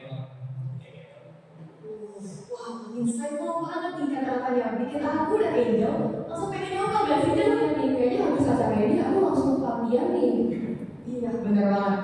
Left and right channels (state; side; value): identical; both; correlation 1.00